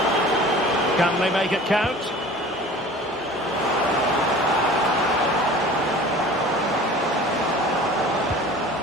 Can they make it count?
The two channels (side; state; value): both; normal; correlation 0.43